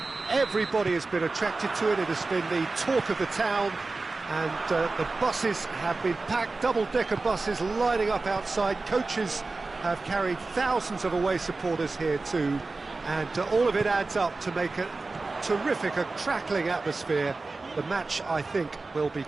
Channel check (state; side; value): quieter; left; 3.6 dB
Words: Everybody has been attracted to it. It has been the talk of the town, and the buses have been packed, double-decker buses lining up outside. Coaches have carried thousands of away supporters here too, and all of it adds up to make a terrific, a crackling atmosphere. The match, I think, will be